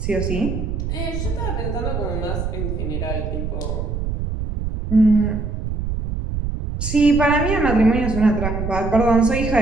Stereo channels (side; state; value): right; noise; rumble, 3 dB below the sound